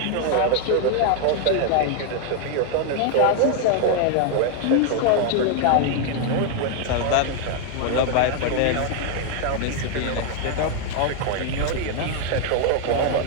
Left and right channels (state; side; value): different; both; correlation 0.00